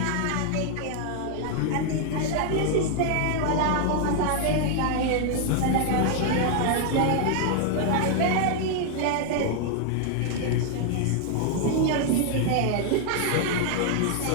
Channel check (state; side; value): different; both; correlation 0.00